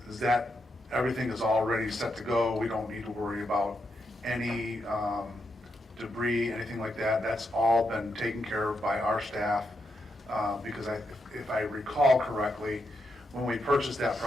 Is that, everything is already set to go? We don't need to worry about any debris, anything like that? That's all been taken care of by our staff? Because if I recall correctly, when we purchased that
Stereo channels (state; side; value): normal; both; correlation 0.83